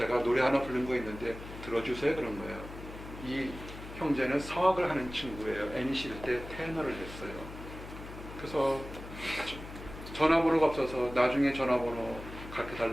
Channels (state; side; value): noise; left; hum, 12 dB below the sound